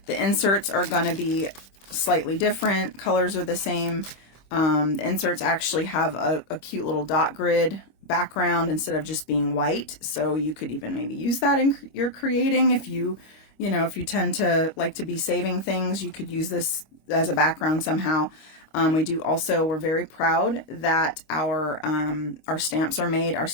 The inserts are going to be slightly different. Colors are the same. The inserts actually have a cute little dot grid background instead of just being white. So you could even maybe use that in your creating. If you tend to like to be saving things, you could use this as a background somehow. We're very proud that our stamps are made, our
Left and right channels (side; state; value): right; late; 25 ms